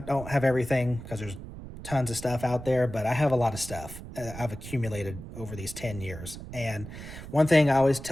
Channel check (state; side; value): noise; right; rumble, 12 dB below the sound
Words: have everything because there's tons of stuff out there, but I have a lot of stuff I've accumulated over these 10 years. And one thing I always